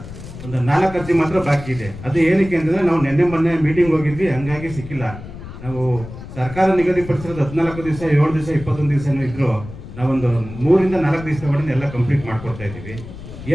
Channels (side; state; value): left; noise; rumble, 13 dB below the sound